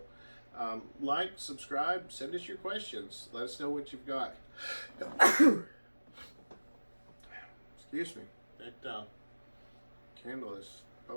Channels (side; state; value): both; inverted; correlation -1.00